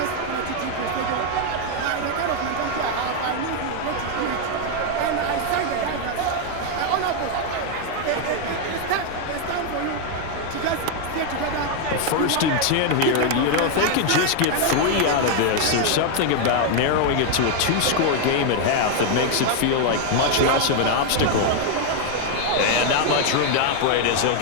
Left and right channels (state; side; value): different; both; correlation 0.01